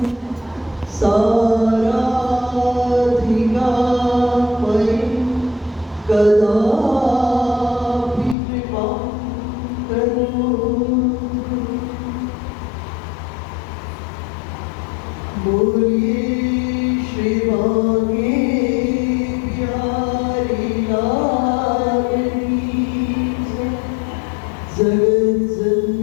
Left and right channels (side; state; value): right; drops out; at 8.3 s